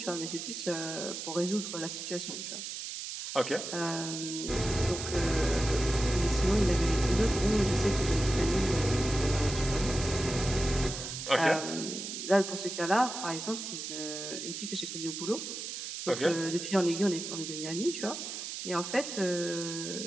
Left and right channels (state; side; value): noise; right; hiss, 7 dB below the sound